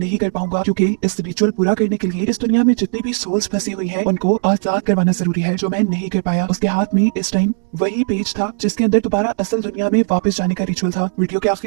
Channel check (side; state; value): left; silent; digital silence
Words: कर पाऊंगा क्योंकि इस रिचुअल पूरा करने के लिए इस दुनिया में जितनी भी सोल्स फंसी हुई हैं उनको आजाद करवाना जरूरी है जो मैं नहीं कर पाया। उसके हाथ में इस टाइम वही पेज था जिसके अंदर दोबारा असल दुनिया में वापस जाने का रिचुअल था। वीडियो के